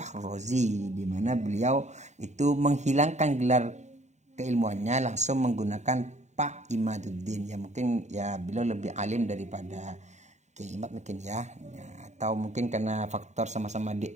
di mana beliau itu menghilangkan gelar keilmuannya langsung menggunakan Pak Imaduddin. Ya mungkin ya beliau lebih alim daripada Kiai Imad mungkin ya, atau mungkin karena faktor sama-sama di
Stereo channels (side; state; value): left; late; 0.34 ms